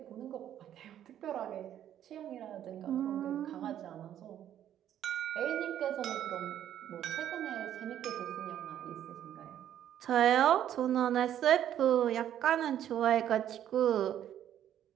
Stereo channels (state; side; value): quieter; left; 10.8 dB